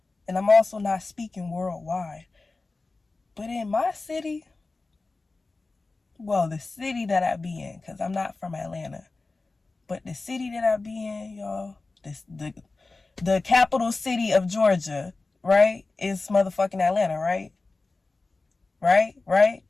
and I'm also not speaking worldwide, but in my city, well, the city that I be in, because I'm not from Atlanta, but the city that I be in, y'all, the capital city of Georgia, right, is motherfucking Atlanta, right? Right?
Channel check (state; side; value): quieter; right; 3.5 dB